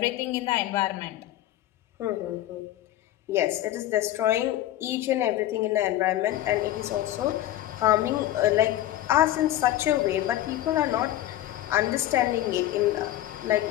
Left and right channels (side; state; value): right; quieter; 13.7 dB